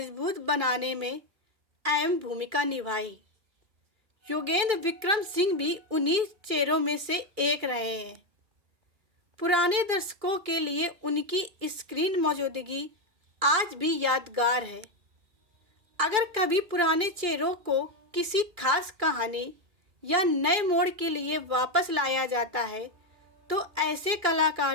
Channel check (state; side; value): late; left; 2.3 ms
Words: बनाने में अहम भूमिका निभाई। योगेंद्र विक्रम सिंह भी उन्हीं चेहरों में से एक रहे हैं। पुराने दर्शकों के लिए उनकी स्क्रीन मौजूदगी आज भी यादगार है। अगर कभी पुराने चेहरों को किसी खास कहानी या नए मोड़ के लिए वापस लाया जाता है तो ऐसे